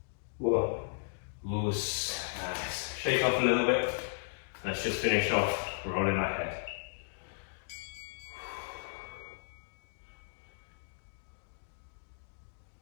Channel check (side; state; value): right; silent; digital silence